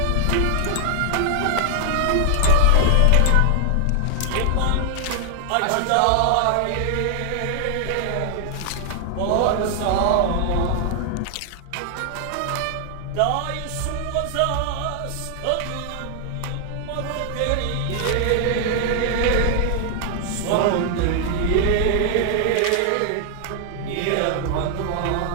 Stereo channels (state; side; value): different; both; correlation 0.00